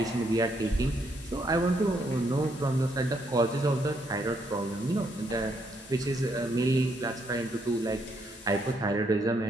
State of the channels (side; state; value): both; normal; correlation 0.74